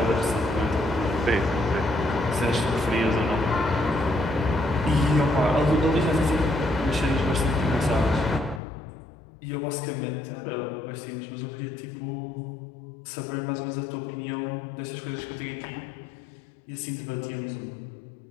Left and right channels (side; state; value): right; drops out; at 8.6 s